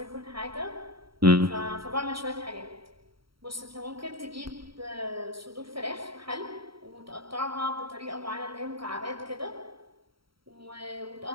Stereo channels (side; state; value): left; late; 0.75 ms